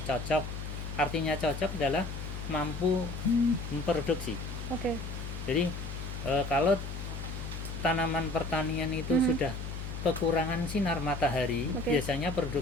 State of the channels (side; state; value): left; noise; hum, 6 dB below the sound